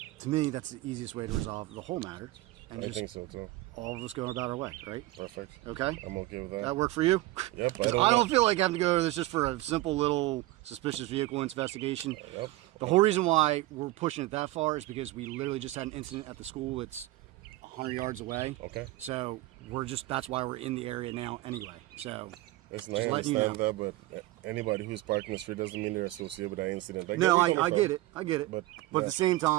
to me, that's the easiest way to resolve the whole matter, and I just think so too. all of us going about our way, right? Perfect. Okay. I'm okay with that. That work for you? Yep. 'Cause I don't feel like having to go to this just for a simple little suspicious vehicle investigation. Yep. The whole reason why we're pushing it that far is because we literally just had an incident at the school that's 100 yards away. Okay. So that's why we're in the area now anyway. So Listen, just I letting you understand that, but anybody who's parking the street doesn't mean they're associated with that incident. no, where you're I coming get it. I get it. But, But yeah. at the same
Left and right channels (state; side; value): quieter; left; 18.1 dB